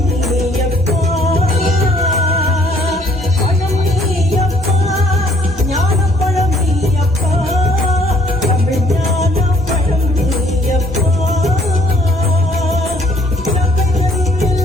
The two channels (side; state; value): both; normal; correlation 0.63